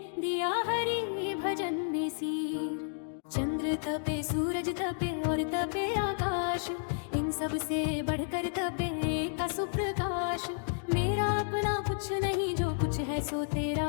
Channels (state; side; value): silent; right; digital silence